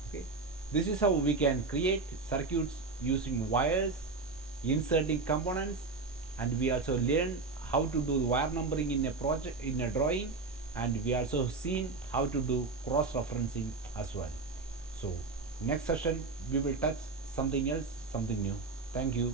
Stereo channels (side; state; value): left; quieter; 4.0 dB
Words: Okay, this is how we can create circuits using wires, inserting components, and we also learn how to do wire numbering in a project, in a drawing, and we also seen how to do cross referencing as well. So next session we will touch something else, something new. Thank